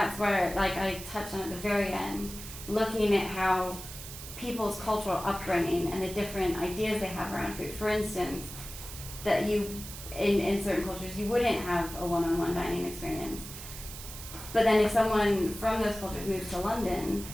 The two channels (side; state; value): right; noise; hiss, 11 dB below the sound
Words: where, like I touched on at the very end, looking at how people's cultural upbringing and the different ideas they have around food. For instance, that in certain cultures, you wouldn't have a one-on-one dining experience. But then if someone from those cultures moves to London